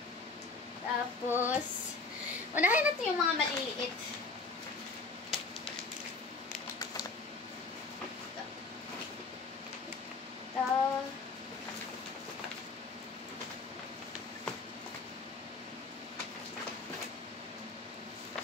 Tapos, unahin natin yung mga maliliit.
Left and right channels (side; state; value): right; quieter; 3.8 dB